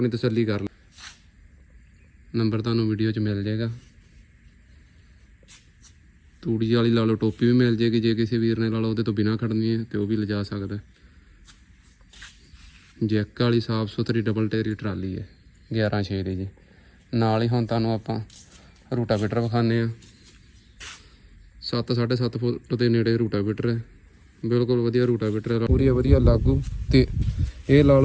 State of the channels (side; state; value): both; identical; correlation 1.00